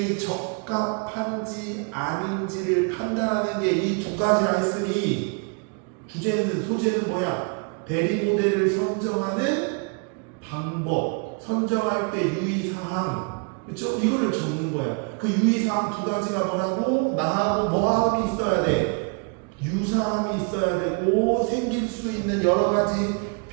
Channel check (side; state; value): left; quieter; 36.2 dB